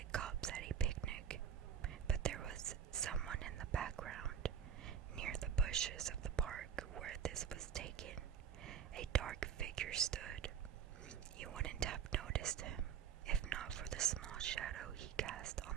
cups at a picnic. But there was someone in the background, near the bushes of the park where this was taken. A dark figure stood. You wouldn't have noticed him, if not for the small shadow he cast on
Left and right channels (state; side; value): quieter; left; 8.1 dB